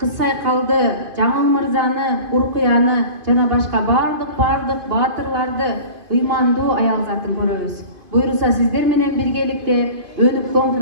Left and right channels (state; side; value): late; left; 2.5 ms